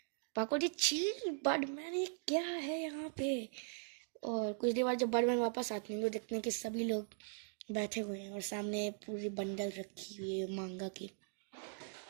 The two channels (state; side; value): silent; left; digital silence